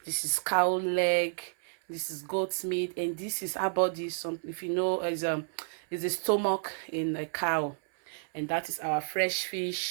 This is cow leg. This is goat's meat, and this is our body. Some, if you know, is a stomach in a cow, and that is our fresh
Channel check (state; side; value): silent; left; 57 dB below the other